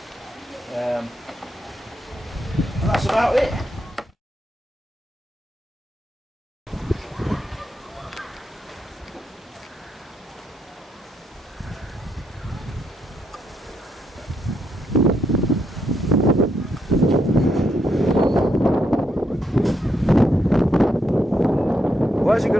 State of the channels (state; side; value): normal; both; correlation 0.78